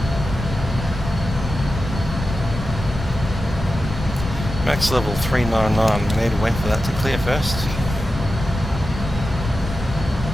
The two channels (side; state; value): both; normal; correlation 0.92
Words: Max level 399, we need to wait for that to clear first.